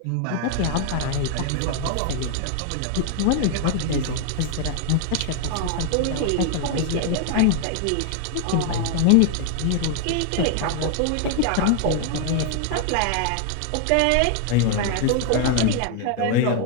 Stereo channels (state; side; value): different; both; correlation 0.00